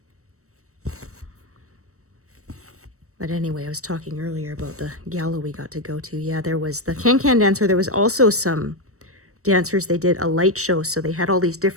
But But anyway, I was talking earlier about the gala we got to go to. Yeah, there was the can-can dancer. There was also some dancers. They did a light show, so they had all these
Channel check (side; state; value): left; late; 0.64 ms